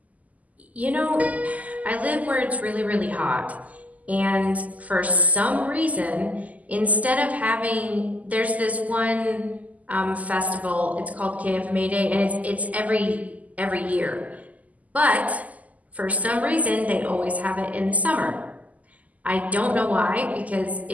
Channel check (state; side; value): late; left; 0.076 ms